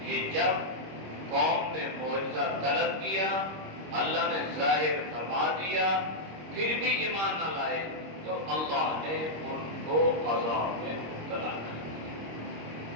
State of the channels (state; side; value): late; left; 26 ms